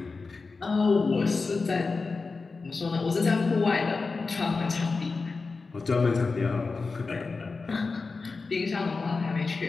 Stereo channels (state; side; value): quieter; right; 4.2 dB